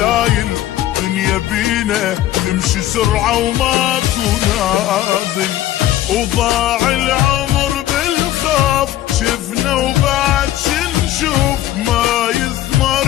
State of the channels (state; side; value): quieter; right; 13.7 dB